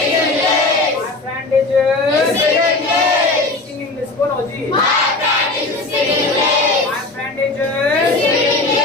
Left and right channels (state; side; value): quieter; right; 3.2 dB